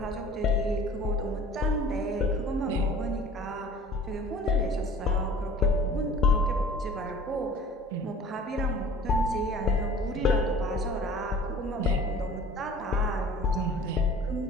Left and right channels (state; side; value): normal; both; correlation 0.46